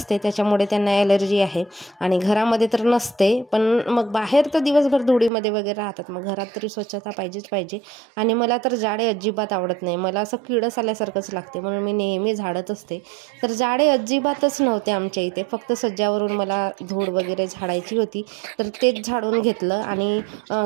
त्याच्यामुळे त्यांना ॲलर्जी आहे. आणि घरामध्ये तर नसते, पण मग बाहेर तर दिवसभर धुळीमध्ये वगैरे राहतात. मग घरात तरी स्वच्छता पाहिजेच पाहिजे. आणि मला तर झाडे अजिबात आवडत नाही. मला असं किडस आल्यासारखंच लागते म्हणून मी नेहमी झाडत असते. तर झाडे अजिबातच नव्हते आमच्या इथे, फक्त सज्जावरून मला धूळ वगैरे झाडायची होती तर तेच झाडून घेतलं. आणि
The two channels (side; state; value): left; drops out; at 5.3 s